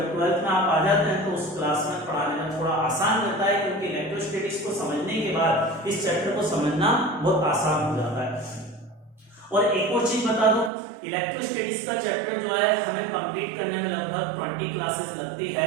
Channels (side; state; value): left; drops out; at 10.7 s